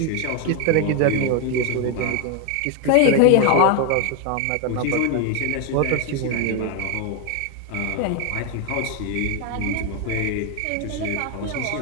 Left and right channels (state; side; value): different; both; correlation 0.01